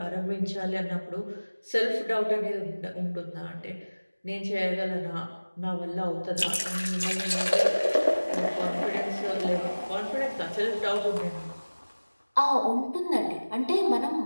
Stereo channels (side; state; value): both; inverted; correlation -1.00